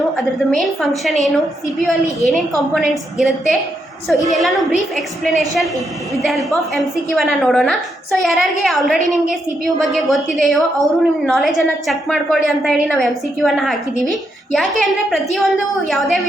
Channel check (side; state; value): both; normal; correlation 0.80